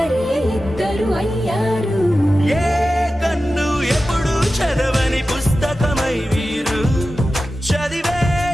ఇద్దరు అయ్యారు ఏ కన్ను ఎప్పుడు చదవని పుస్తకమై వీరు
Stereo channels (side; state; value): both; normal; correlation 0.94